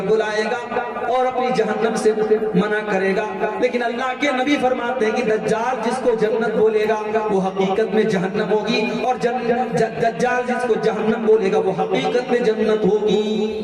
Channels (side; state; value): both; identical; correlation 1.00